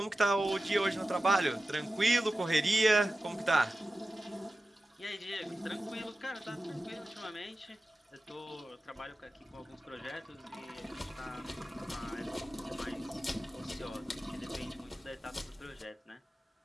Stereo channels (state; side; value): normal; both; correlation 0.94